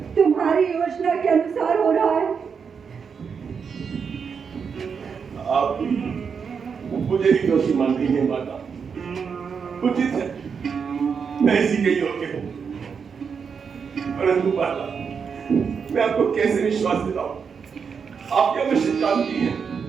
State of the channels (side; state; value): left; quieter; 6.2 dB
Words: तुम्हारी योजना के अनुसार हो रहा है। आप मुझे ही दोषी मान रही हैं माता। उचित है, मैं इसी के योग्य हूँ। परंतु माता, मैं आपको कैसे विश्वास दिलाऊं? आप क्या निश्चित जानती हैं